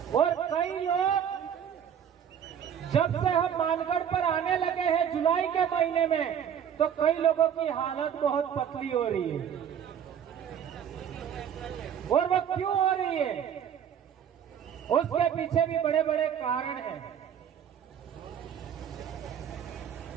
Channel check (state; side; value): quieter; left; 8.7 dB